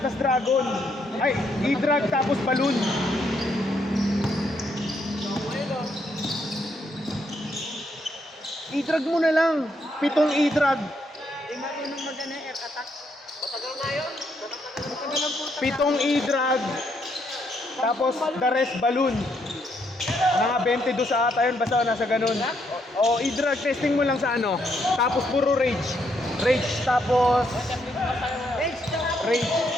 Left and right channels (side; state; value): both; normal; correlation 0.75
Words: tas Dragon. Ay, i-drag tapos balloon. I-drag mo na lang. 7 i-drag. Hindi marunong mag-ano air attack. Matagal na yun. Matagal lang po. 7 i-drag. Tapos the rest balloon. Mga 22 sa ata yun, basta nasa ganun. O i-drag testing mo lang sa ano. Tapos puro rage. Rage tapos rage.